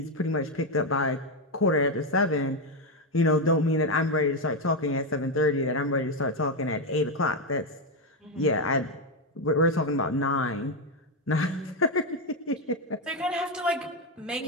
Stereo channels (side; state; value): both; normal; correlation 0.06